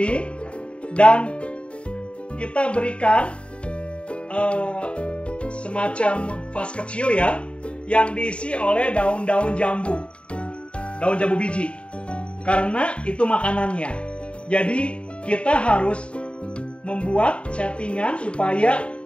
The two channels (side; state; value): right; late; 0.058 ms